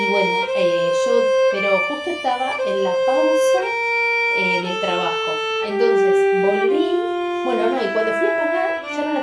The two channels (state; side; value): identical; both; correlation 1.00